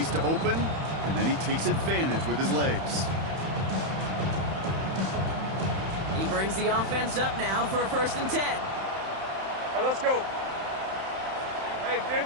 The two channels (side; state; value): left; late; 31 ms